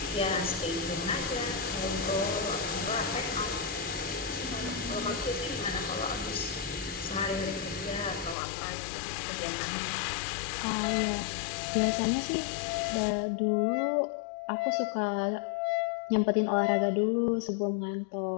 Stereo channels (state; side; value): drops out; right; at 8.3 s